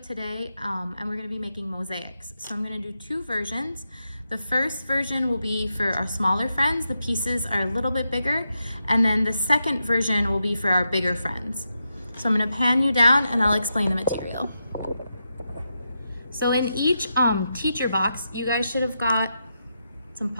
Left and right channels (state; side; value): inverted; both; correlation -0.86